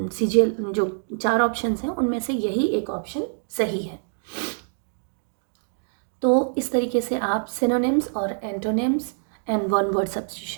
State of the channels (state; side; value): silent; left; digital silence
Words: सीजीएल जो 4 ऑप्शंस हैं उनमें से यही एक ऑप्शन सही है। तो इस तरीके से आप सिनोनिम्स और antonyms and one word